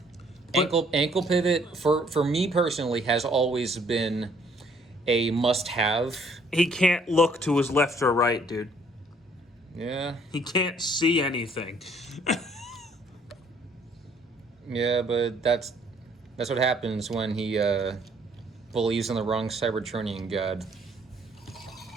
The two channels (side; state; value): both; normal; correlation 0.63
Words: But, ankle pivot, for me personally, has always been a must-have. he can't look to his left or right, dude. Yeah. He can't see anything. Yeah, but that's what happens when he believes in the wrong Cybertronian god.